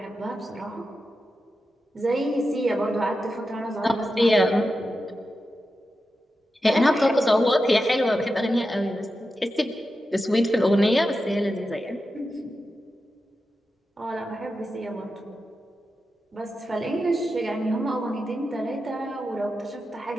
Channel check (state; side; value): normal; both; correlation 0.90